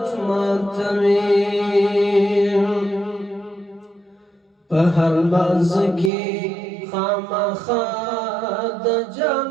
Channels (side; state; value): left; drops out; at 6.1 s